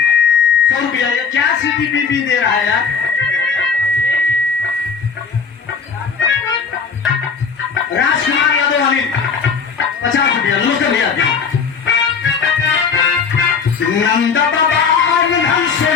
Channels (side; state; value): right; quieter; 5.8 dB